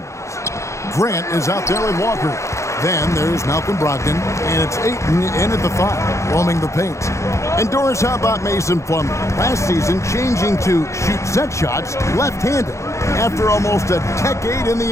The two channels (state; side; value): late; right; 0.14 ms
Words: Grant is out there with Walker. Then there's Malcolm Brogdon, and it's Ayton in at the 5, roaming the paint. And Doris, how about Mason Plumlee? Last season, changing to shoot set shots left-handed after almost a decade in the